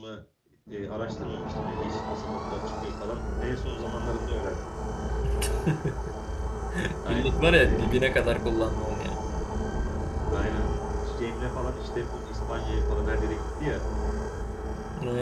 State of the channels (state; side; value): identical; both; correlation 1.00